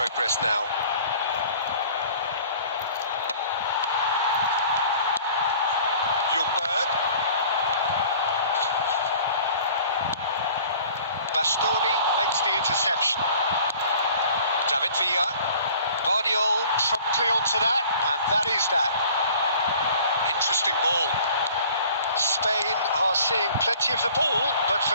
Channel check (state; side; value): inverted; both; correlation -0.49